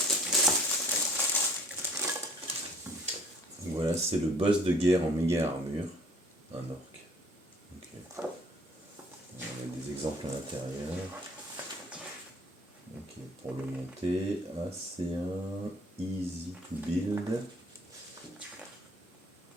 Voilà, c'est le boss de guerre en méga armure, un orc. Ok. On a des exemples à l'intérieur. Ok, pour le monter, c'est un easy to build.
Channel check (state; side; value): normal; both; correlation 0.54